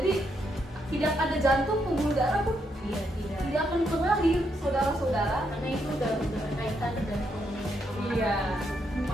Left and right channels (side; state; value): both; normal; correlation 0.78